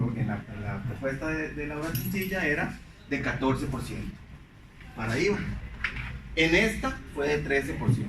de la obra sencilla era de 14% para IVA. En esta fue de 13%.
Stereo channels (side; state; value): both; identical; correlation 1.00